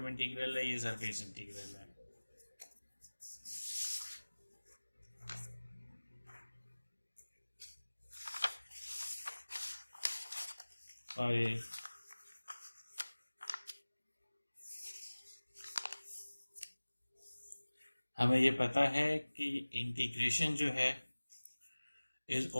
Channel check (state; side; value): inverted; both; correlation -1.00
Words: इंटीग्रल है, ये सरफेस इंटीग्रल है। और ये हमें ये पता है कि इंटीग्रेशन जो है is